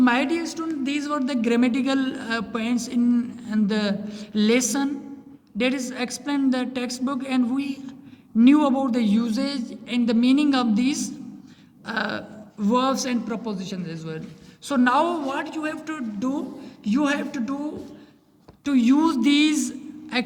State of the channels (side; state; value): both; identical; correlation 1.00